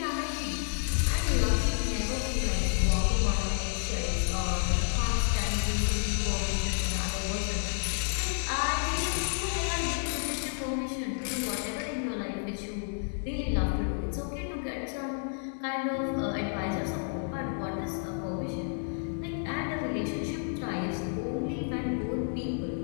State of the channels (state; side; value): silent; right; 57 dB below the other